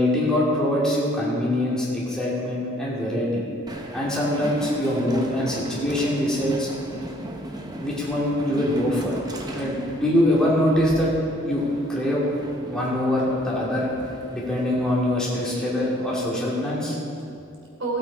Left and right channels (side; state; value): both; normal; correlation 0.61